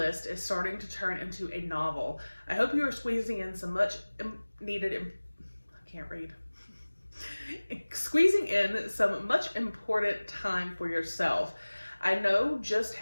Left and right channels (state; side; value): inverted; both; correlation -1.00